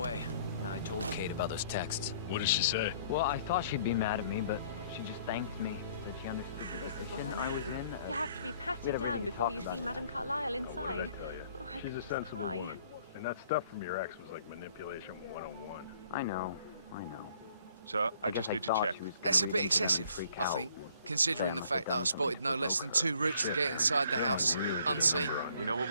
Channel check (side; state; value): both; inverted; correlation -0.60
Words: I told Kate about those texts. What did she say? Well, I thought she'd be mad at me, but she just thanked me. Said she understood the This is what position I I was mean. in. You have to be we patted had a really down good before talk you about see it. Madame Carlyle inside. What did I tell you? Oh, I She's a could sensible cry. woman. And that stuff from your ex was like manipulation 101. I know. Sir, I just guess need to thought check. she was gonna That's a read bit into them and excessive, freak I out. think, considering Say the I fact that I must have done spotted no something less than 2 routes to get inside the house, Really did a unseen. number on you. We know what